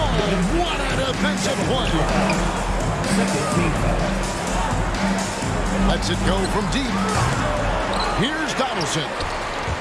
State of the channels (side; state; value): both; identical; correlation 1.00